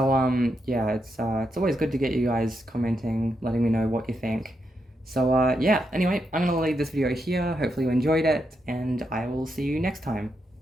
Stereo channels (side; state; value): both; normal; correlation 0.83